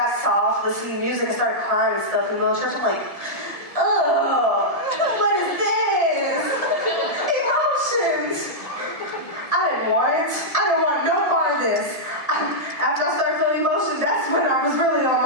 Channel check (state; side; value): late; right; 1.7 ms